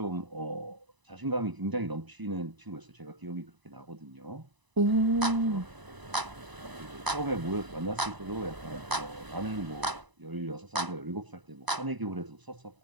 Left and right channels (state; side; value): late; left; 1.0 ms